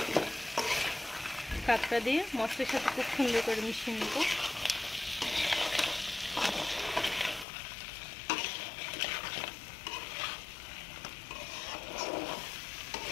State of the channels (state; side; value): drops out; right; at 7.5 s